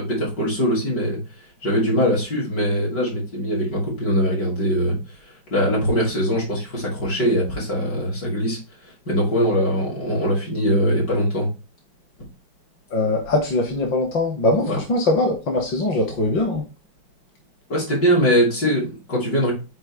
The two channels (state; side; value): late; right; 5.2 ms